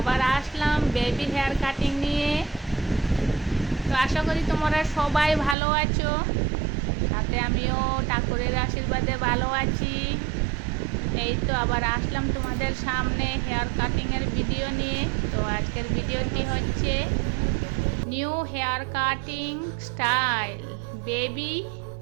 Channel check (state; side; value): drops out; left; at 5.6 s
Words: আসলাম বেবি হেয়ার কাটিং নিয়ে। তো আশা করি তোমরা সবাই ভালো আছো, সাথে আমিও ঠাকুরের আশীর্বাদে ভালো আছি। এই তো আবার আসলাম তোমাদের সামনে হেয়ার কাটিংয়ের ভিডিও নিয়ে। তো আজকের ভিডিওটি হচ্ছে new hair cutting style, baby